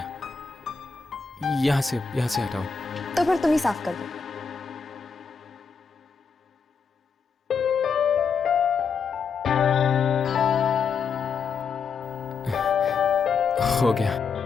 यहाँ से हटाओ। तो फिर तुम ही साफ कर दो। हो गया।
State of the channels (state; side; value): quieter; right; 5.6 dB